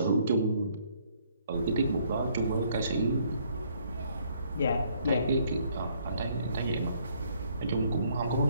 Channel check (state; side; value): inverted; both; correlation -0.66